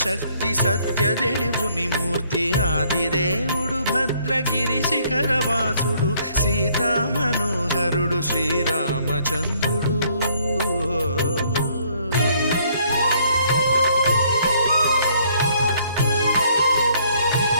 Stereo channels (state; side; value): inverted; both; correlation -0.65